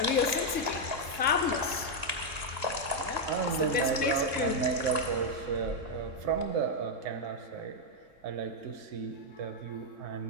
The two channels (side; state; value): left; late; 3.7 ms